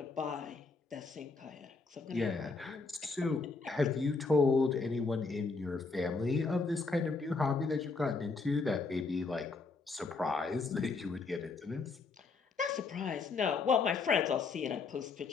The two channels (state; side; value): quieter; right; 4.2 dB